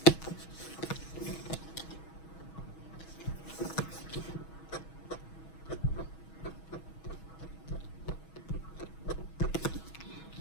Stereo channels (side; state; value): right; late; 6.2 ms